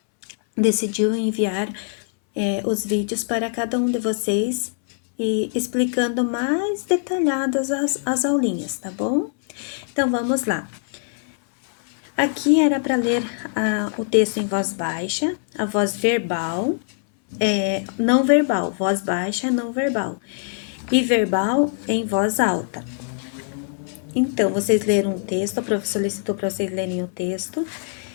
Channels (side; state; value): right; silent; 62 dB below the other